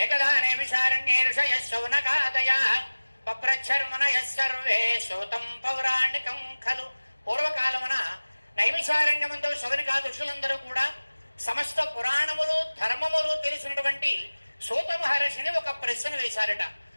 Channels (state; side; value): inverted; both; correlation -1.00